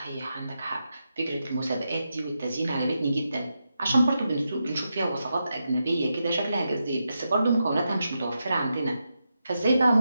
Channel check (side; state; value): both; inverted; correlation -0.87